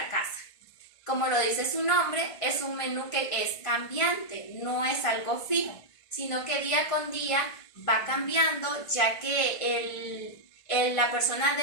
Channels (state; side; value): late; right; 1.5 ms